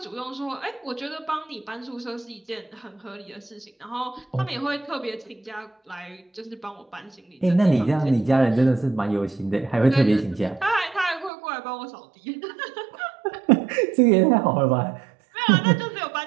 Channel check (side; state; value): left; drops out; at 11.3 s